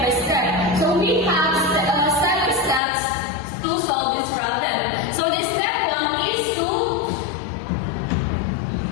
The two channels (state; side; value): drops out; right; at 2.8 s